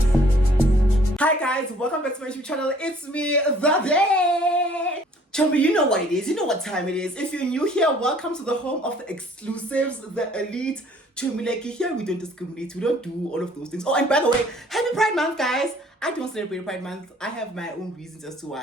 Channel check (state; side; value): normal; both; correlation 0.57